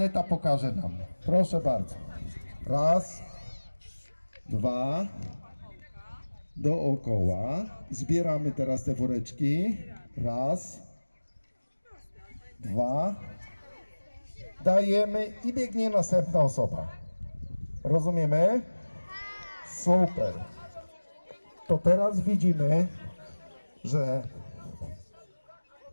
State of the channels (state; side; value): inverted; both; correlation -1.00